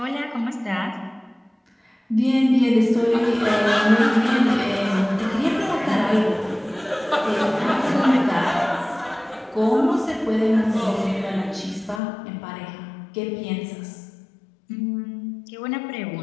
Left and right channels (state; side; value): drops out; right; at 12.0 s